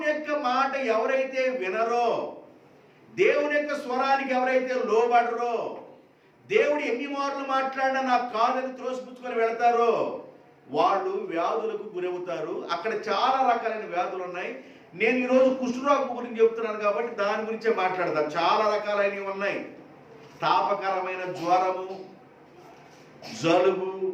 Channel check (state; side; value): identical; both; correlation 1.00